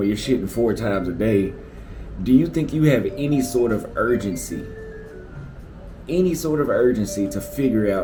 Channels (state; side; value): identical; both; correlation 1.00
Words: you're shitting 4 times a day, do you think you have any sort of urgency? Any sort of urgency to figure